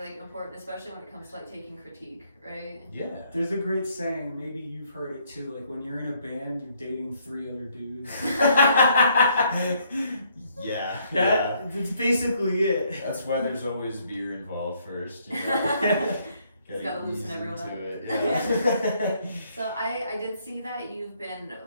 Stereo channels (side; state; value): both; inverted; correlation -0.69